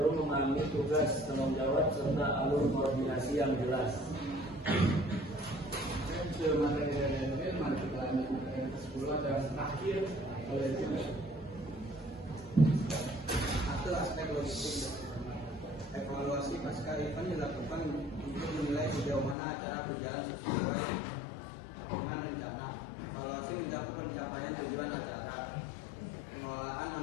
memahami tugas, tanggung jawab, serta alur koordinasi yang jelas. Itu materi dari Jasmine. Mari kita terakhir oleh juga. Satu aspek logistik. Evaluasi pasca event dilakukan untuk menilai sejauh mana acara berjalan sesuai dengan rencana. Evaluasi mencakup pencapaian tujuan acara, pengelolaan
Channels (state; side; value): drops out; right; at 19.4 s